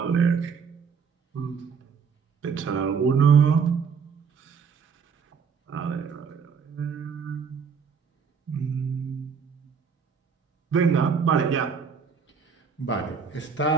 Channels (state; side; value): quieter; left; 6.1 dB